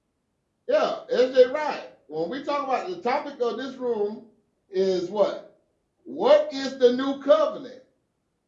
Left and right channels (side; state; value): both; identical; correlation 1.00